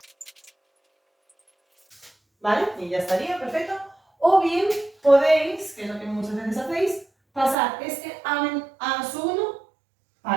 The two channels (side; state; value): left; drops out; at 7.6 s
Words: ¿Vale? Y ya estaría, perfecto. O bien podéis, que es lo que muchas veces hacéis, pasar este a su 1